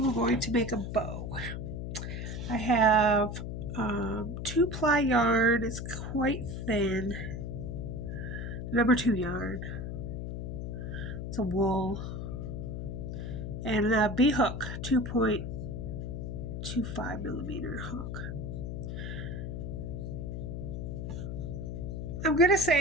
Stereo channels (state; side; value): noise; left; hum, 5 dB below the sound